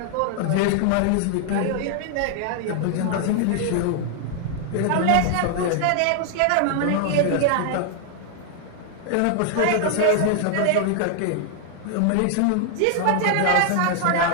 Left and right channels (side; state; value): both; different; correlation 0.00